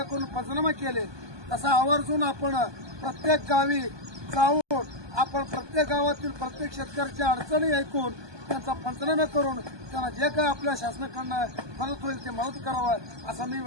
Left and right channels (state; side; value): late; left; 1.2 ms